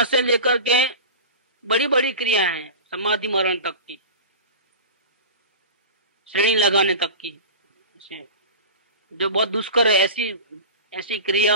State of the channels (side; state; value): both; inverted; correlation -0.32